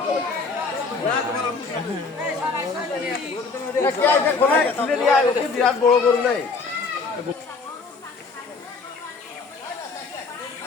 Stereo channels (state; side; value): quieter; right; 4.4 dB